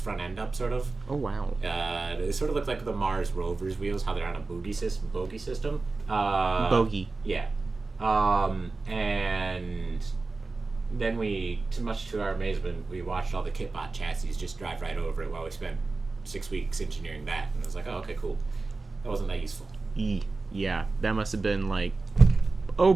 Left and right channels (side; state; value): left; quieter; 3.7 dB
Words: end up, sort of. Oh wow. It sort of looked like the Mars rover's wheels, how they're on a bogey system. Bogey. Yeah. And then we, too much to our amazement, we watched all the Kitbot chassis just drive right over it while we spent 6 weeks engineering that. And it was like, oh, okay, cool. That wasn't that useful. Yeah, that must have been like, oh